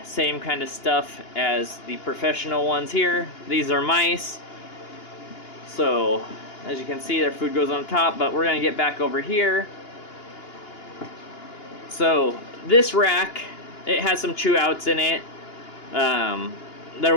same kind of stuff as the professional ones here. These are mice. So as you can see, their food goes on top, but we're gonna get back over here. So this rack, it has some chew outs in it. There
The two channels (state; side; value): late; right; 2.9 ms